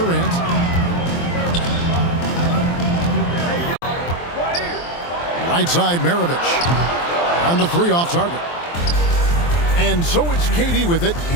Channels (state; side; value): late; right; 23 ms